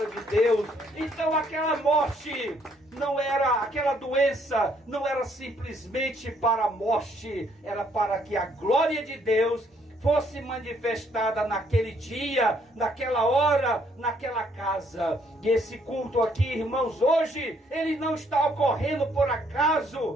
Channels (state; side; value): normal; both; correlation 0.67